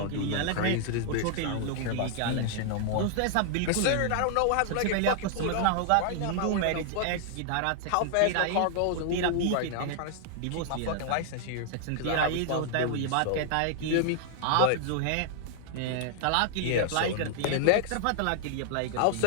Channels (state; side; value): different; both; correlation 0.00